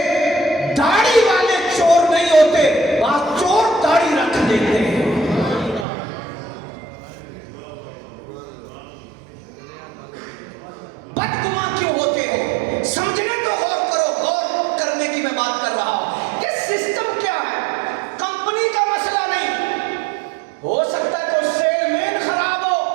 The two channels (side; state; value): left; drops out; at 5.9 s